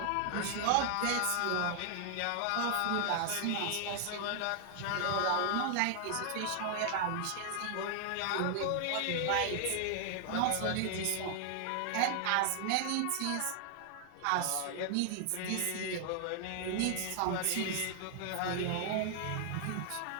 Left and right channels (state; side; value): different; both; correlation 0.00